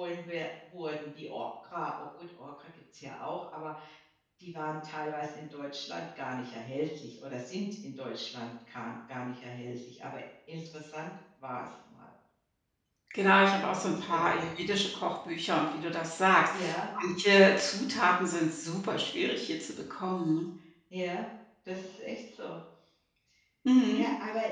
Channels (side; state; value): both; identical; correlation 1.00